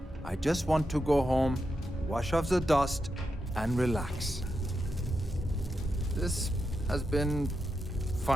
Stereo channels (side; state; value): both; normal; correlation 0.86